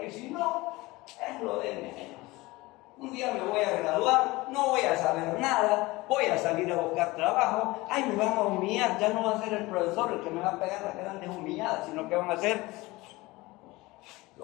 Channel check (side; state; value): right; quieter; 21.1 dB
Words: y si no, es lo de menos. Un día me voy a graduar, no voy a saber nada, voy a salir a buscar trabajo, ay, me van a humillar, ya no va a ser el profesor el que me va a pegar las grandes humilladas, sino que van a ser